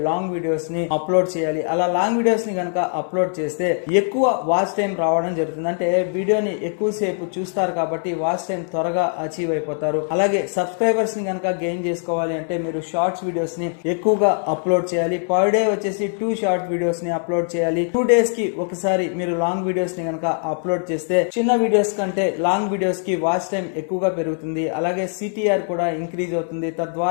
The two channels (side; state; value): right; silent; 60 dB below the other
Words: లాంగ్ వీడియోస్ ని అప్లోడ్ చేయాలి. అలా లాంగ్ వీడియోస్ ని కనుక అప్లోడ్ చేస్తే ఎక్కువ వాచ్ టైం రావడం జరుగుతుంది. అంటే వీడియోని ఎక్కువసేపు చూస్తారు కాబట్టి వాచ్ టైం త్వరగా అచీవ్ అయిపోతారు. అలాగే సబ్స్క్రైబర్స్ ని కనుక గెయిన్ చేసుకోవాలి అంటే మీరు షార్ట్స్ వీడియోస్ ని ఎక్కువగా అప్లోడ్ చేయాలి. పర్ డే వచ్చేసి 2 షార్ట్ వీడియోస్ ని అప్లోడ్ చేయాలి. 2 డేస్ కి ఒకసారి మీరు లాంగ్ వీడియోస్ ని కనుక అప్లోడ్ చేస్తే చిన్న వీడియోస్ కంటే లాంగ్ వీడియోస్ కి వాచ్ టైం ఎక్కువగా పెరుగుతుంది. అలాగే సిటిఆర్ కూడా ఇంక్రీజ్ అవుతుంది.